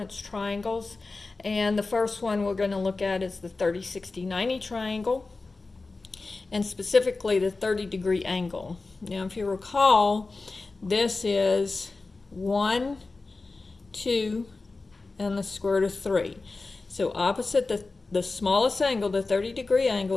triangles. And the first one we're going to look at is the 30, 60, 90 triangle, and specifically the 30-degree angle. Now, if you recall, this is 1, 2, and the square root of 3. So opposite the smallest angle, the 30-degree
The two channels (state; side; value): quieter; right; 3.7 dB